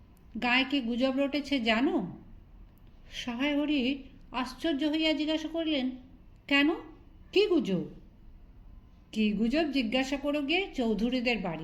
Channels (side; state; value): both; identical; correlation 1.00